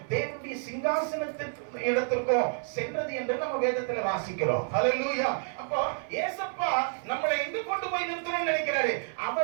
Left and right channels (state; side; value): silent; left; 58 dB below the other